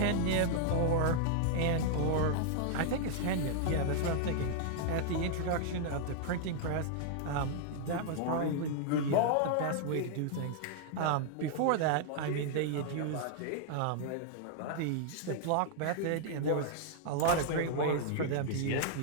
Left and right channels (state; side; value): different; both; correlation -0.01